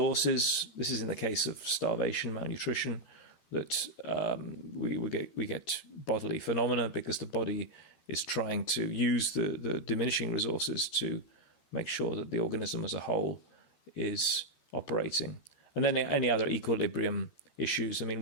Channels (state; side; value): late; right; 13 ms